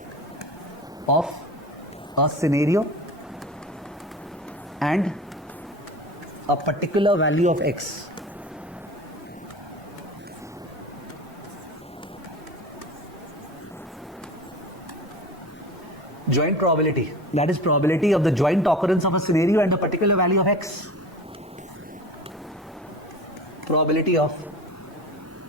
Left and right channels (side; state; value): both; normal; correlation 0.34